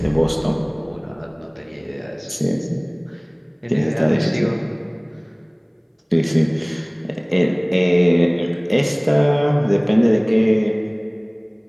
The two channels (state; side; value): identical; both; correlation 1.00